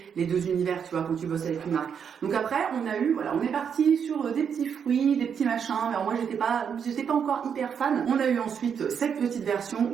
les deux univers, tu vois, quand tu bosses avec une marque. Donc après, on est parti sur des petits fruits, des petits machins, mais alors moi, j'étais pas encore hyper fan. On a eu ensuite cette petite version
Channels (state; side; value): quieter; left; 7.3 dB